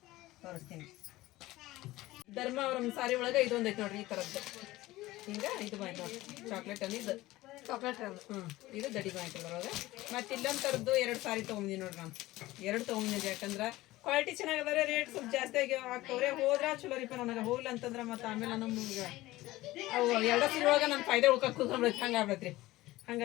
ತೋರಿಸ್ತೀನಿ. ಧರ್ಮಾವರಂ ಸಾರಿ ಒಳಗೆ ಇದೊಂದು ಐತಿ ನೋಡ್ರಿ, ಈ ಥರದ್ದು. ಹಿಂಗೆ ಇದು ಬಂತು ನೋಡ್ರಿ, ಚಾಕ್ಲೇಟ್ ಅನ್ನಿ ಇದು ಚಾಕ್ಲೇಟ್. ಇದು ದಡಿ ಬಂತು ಅದ್ರೊಳಗೆ. ಮತ್ತು ಇಲ್ಲೊಂದು ಥರದ್ದು 2 ಸಾರಿ ತೊಗೊಂಡಿನಿ ನೋಡ್ರಿ. ನಾನು 2 ತೊಗೊಂಡಿದ್ದೆ. ಯಾಕಂದ್ರೆ ಕ್ವಾಲಿಟಿ ಚೆನ್ನಾಗದಾರೆ, ರೇಟ್ ಸ್ವಲ್ಪ ಜಾಸ್ತಿ ಆಗಿ ಆಗ್ತವ್ರೆ. ಹೋದ್ರೆ ಚಲೋ ರೀಪ. ನನಗೆ ಹೋಗ್ಲಿ ಅಂತಂದ್ರೆ ಮತ್ತೆ ಆಮೇಲೆ ನಮ್ಗೆ ಅವು 2 ಸೀರೆ ಒಳಗೆ ನನ್ನ ಫಾಯ್ದೆ ಉಳ್ಕೊಂಡು ಕೂತ್ಕೊಂಡ್ಬಿಡೈತಿ. ಹಂಗೆ ಆಗ್ಬಿಡತ್ರಿ.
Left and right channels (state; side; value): quieter; right; 17.9 dB